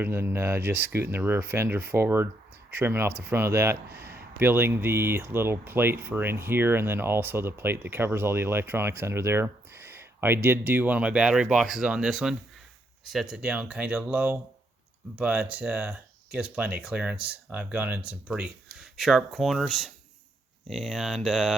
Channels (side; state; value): both; normal; correlation 0.76